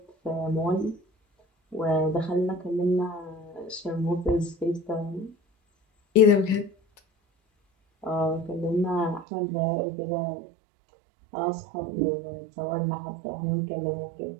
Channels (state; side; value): drops out; left; at 9.2 s